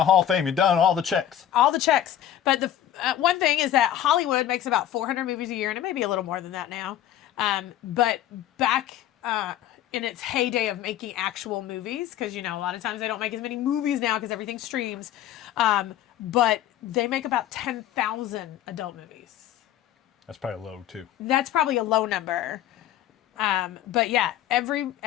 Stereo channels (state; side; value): quieter; right; 11.5 dB